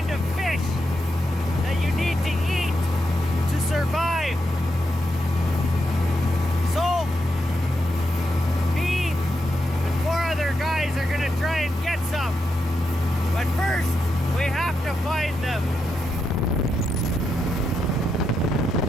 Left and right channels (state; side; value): normal; both; correlation 0.84